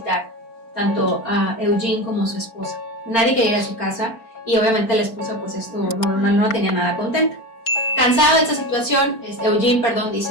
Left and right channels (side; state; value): right; late; 4.4 ms